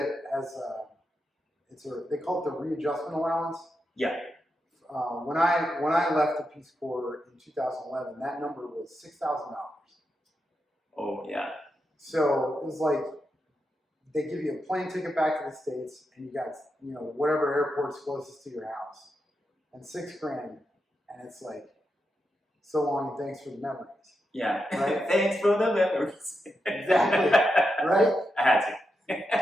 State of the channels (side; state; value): both; normal; correlation 0.86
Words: as they call it the readjustment allowance. Yeah. When I left the Peace Corps in 2011, that number was $6,000. Oh, yeah. So it was like they give you a plane ticket back to the States, and you got, you know, whatever airport's closest to your house, and $6,000, and it's like, so long and thanks for the memories. Yeah. Right? Thanks for the memories. Exactly. Right? I had